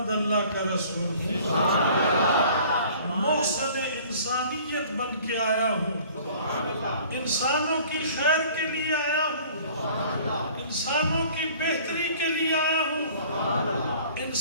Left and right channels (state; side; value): inverted; both; correlation -0.51